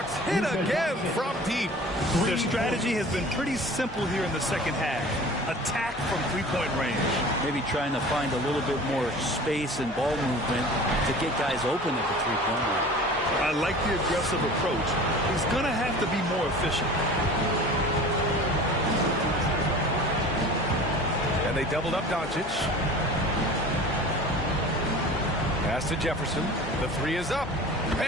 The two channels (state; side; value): normal; both; correlation 0.41